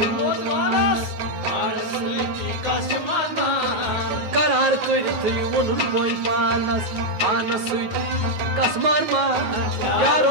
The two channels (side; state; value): left; late; 9.4 ms